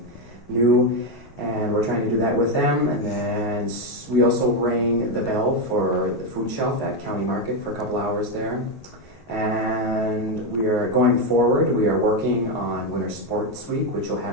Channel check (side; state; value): both; normal; correlation 0.07